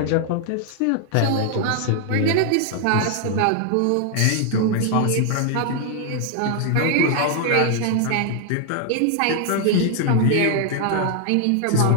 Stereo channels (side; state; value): both; different; correlation 0.00